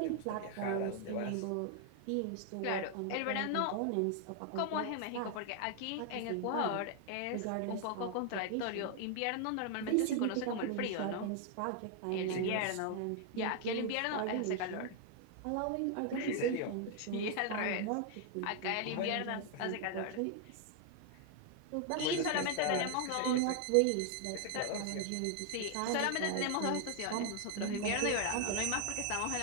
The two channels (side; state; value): both; different; correlation 0.00